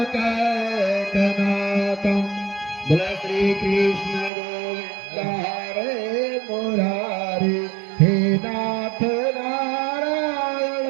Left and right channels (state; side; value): drops out; left; at 4.3 s